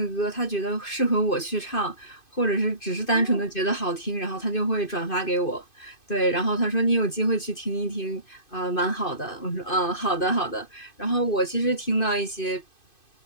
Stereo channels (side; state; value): right; late; 2.5 ms